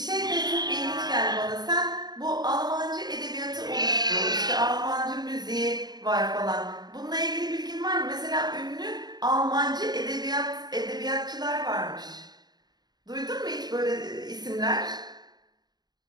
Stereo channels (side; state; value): left; late; 0.20 ms